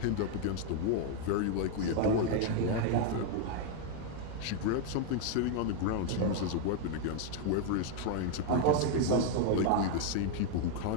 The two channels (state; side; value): different; both; correlation 0.00